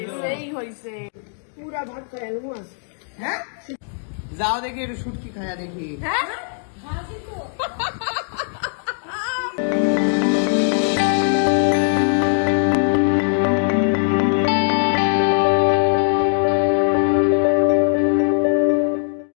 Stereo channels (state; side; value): silent; right; digital silence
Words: সেই হয়েছে, পুরা ভাত খায় মাছ। হ্যাঁ যাও দেখি একটু শুটকি খায়া দেখি। হ্যাঁ